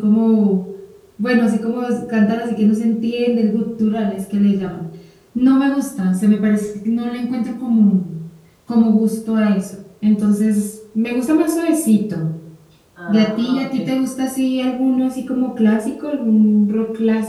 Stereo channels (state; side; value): identical; both; correlation 1.00